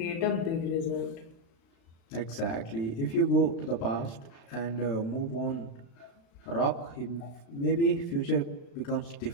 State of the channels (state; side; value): late; right; 36 ms